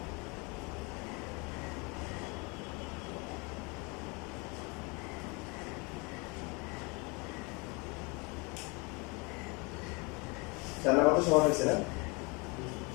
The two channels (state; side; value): quieter; right; 29.2 dB